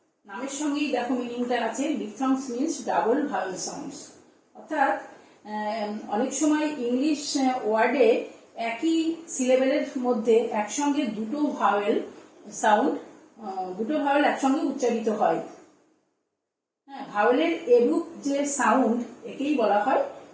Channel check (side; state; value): both; identical; correlation 1.00